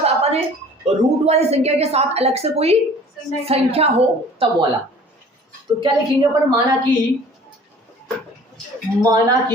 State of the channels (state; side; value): normal; both; correlation 0.48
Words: अपने रूट वाली संख्या के साथ अलग से कोई संख्या हो तब वाला। तो क्या लिखेंगे अपन, माना कि